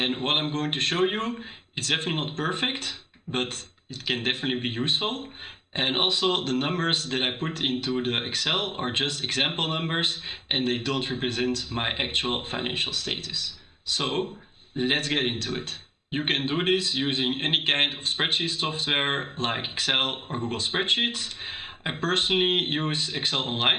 what I'm going to show you, it's definitely not perfect, but it can definitely be useful. And also the numbers that I put into the Excel are just example numbers and they don't represent my actual financial status. So let's get into it. You can do this using any kind of spreadsheet software like Excel or Google Spreadsheets. I personally use Excel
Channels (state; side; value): identical; both; correlation 1.00